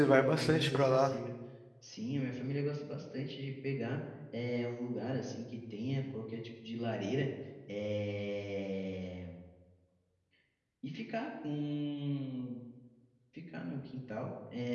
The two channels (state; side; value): identical; both; correlation 1.00